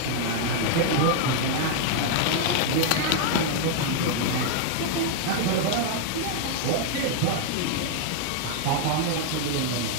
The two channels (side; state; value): both; different; correlation 0.00